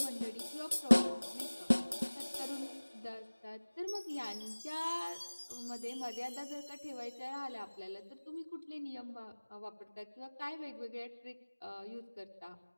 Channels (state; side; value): inverted; both; correlation -1.00